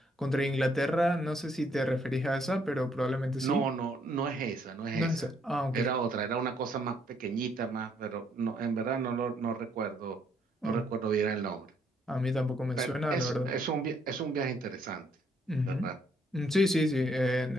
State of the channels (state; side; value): normal; both; correlation 0.69